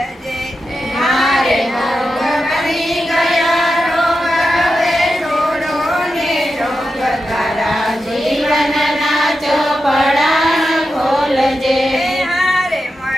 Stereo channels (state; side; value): normal; both; correlation 0.89